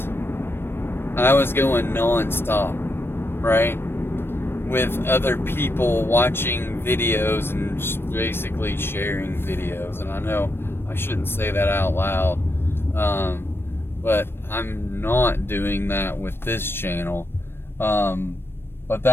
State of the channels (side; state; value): right; late; 0.11 ms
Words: I was going non-stop, right? With other people watching videos and basically sharing videos. And I know I shouldn't say that out loud, but I'm not doing that with this channel. But